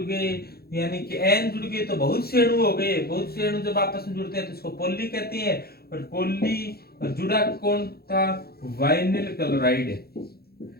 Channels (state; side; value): late; right; 0.45 ms